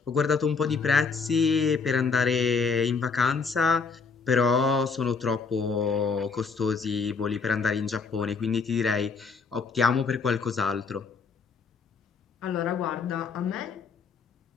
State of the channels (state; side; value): quieter; right; 5.0 dB